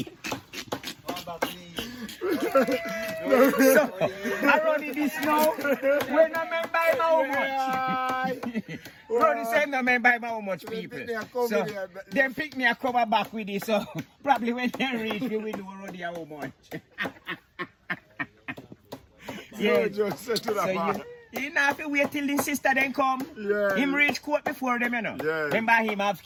So, I run this now. When I remember him how much. Run say no remember him how much people. So, them pick me a cover back with it. So, probably when they reach, we will know Ruddy how much. Yeah, just say to the So man. you not have to wait till the sister then come. Yeah. Him reach court before them, you know. Yeah. Remember him have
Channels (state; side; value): identical; both; correlation 1.00